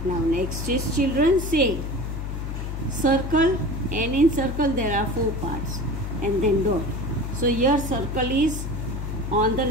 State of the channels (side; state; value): left; noise; hum, 4 dB below the sound